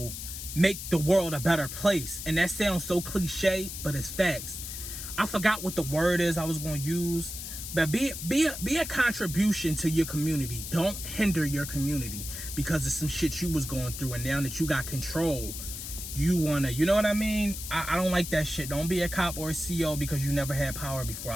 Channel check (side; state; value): left; noise; hiss, 8 dB below the sound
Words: make the world a better place. And that sounds so cliche, but it's facts. I forgot what the word is I was going to use, but be a contribution to your community. Don't hinder your community because of some shit you was going through, and now that you got control, you wanna, you know what I mean? I don't like that shit. Don't be a cop or a CO because you never had power before.